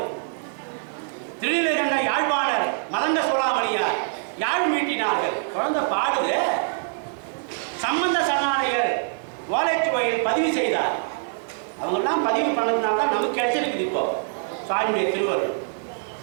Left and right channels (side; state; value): left; silent; digital silence